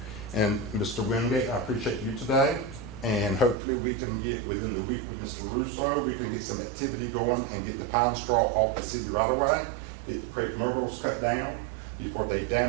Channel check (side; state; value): left; drops out; at 3.6 s